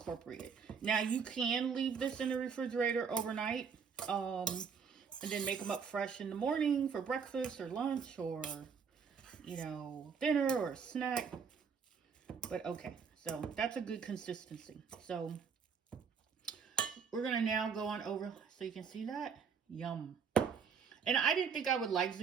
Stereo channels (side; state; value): left; quieter; 6.3 dB